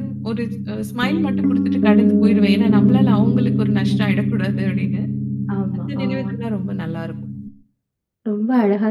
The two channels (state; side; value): identical; both; correlation 1.00